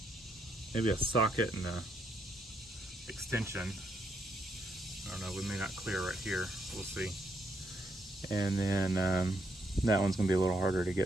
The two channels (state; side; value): normal; both; correlation 0.76